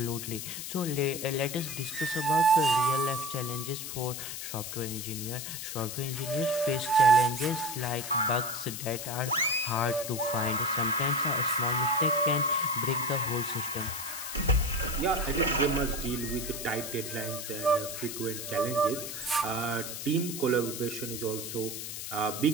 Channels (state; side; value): noise; left; hiss, 7 dB below the sound